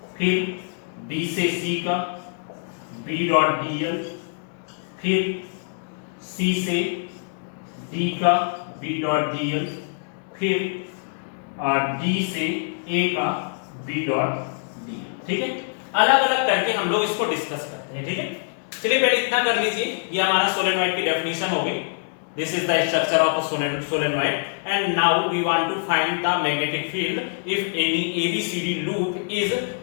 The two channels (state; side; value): silent; right; digital silence